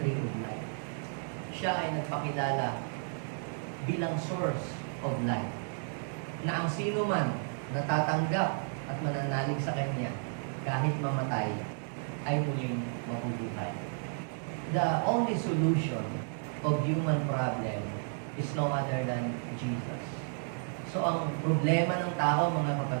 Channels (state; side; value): silent; left; 56 dB below the other